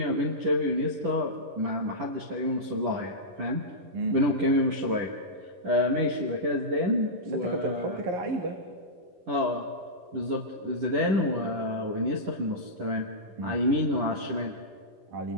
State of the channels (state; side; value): late; left; 10 ms